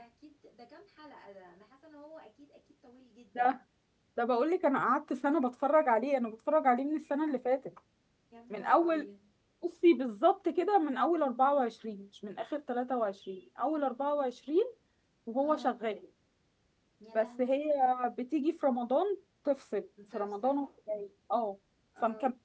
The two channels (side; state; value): both; identical; correlation 1.00